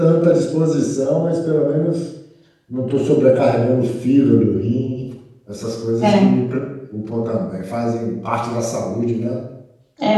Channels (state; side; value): identical; both; correlation 1.00